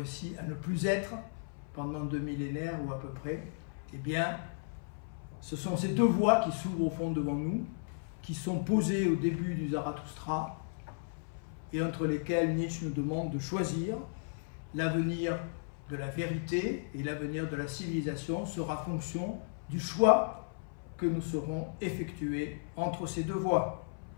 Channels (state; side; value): silent; right; 55 dB below the other